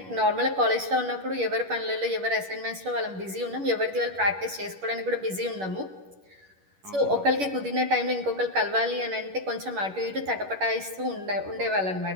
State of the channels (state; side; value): late; left; 11 ms